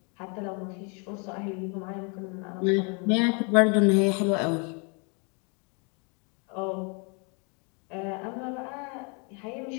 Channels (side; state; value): right; quieter; 35.1 dB